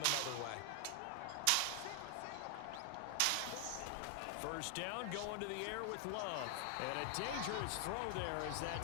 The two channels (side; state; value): both; different; correlation 0.00